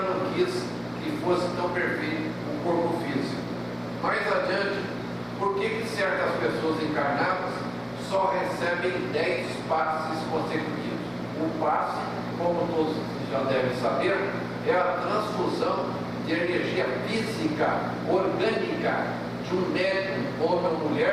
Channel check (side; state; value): right; noise; hum, 26 dB below the sound